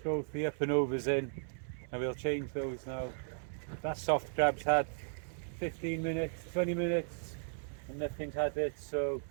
both the up and overs in and we'll change those now. That soft crab's had 15 minutes, 20 minutes and nothing's had it, so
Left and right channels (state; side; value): silent; left; 54 dB below the other